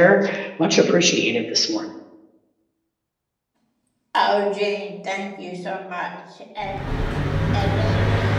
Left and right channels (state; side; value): identical; both; correlation 1.00